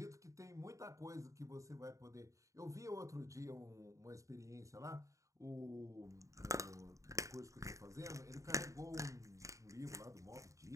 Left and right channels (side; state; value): left; late; 0.16 ms